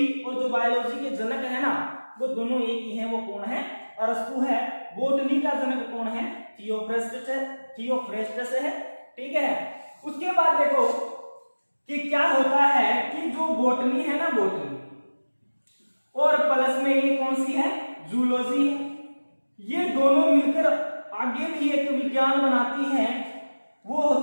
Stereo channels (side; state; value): both; inverted; correlation -1.00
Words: और जो बायोलॉजी के जनक है ना वो दोनों एक ही हैं। वो कौन है? अरस्तु है। बॉटनी का जनक कौन है? थियोफ्रेस्टस है। ठीक है, उसके बाद देखो कि क्या होता है कि जो बॉटनी है ना, बॉटनी और प्लस में ये कौन सी है? जूलॉजी है। ये दोनों मिलकर आगे भी एक विज्ञान बनाती हैं, वो